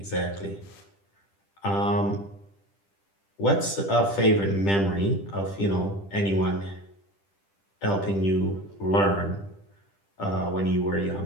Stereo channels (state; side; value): late; right; 10 ms